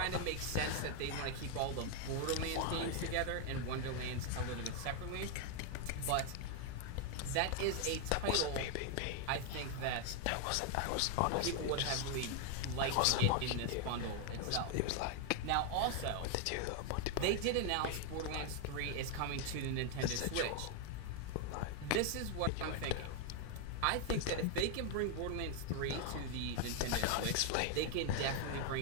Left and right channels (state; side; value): different; both; correlation 0.00